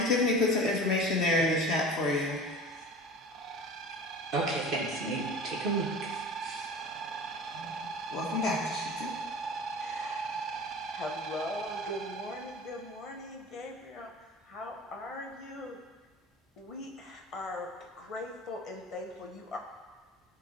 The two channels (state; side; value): normal; both; correlation 0.37